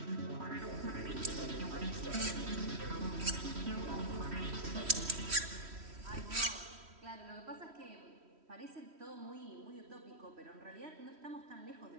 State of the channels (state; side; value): late; left; 3.1 ms